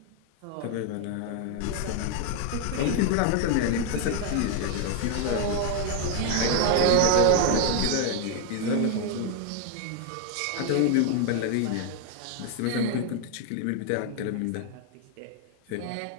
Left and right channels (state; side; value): different; both; correlation 0.00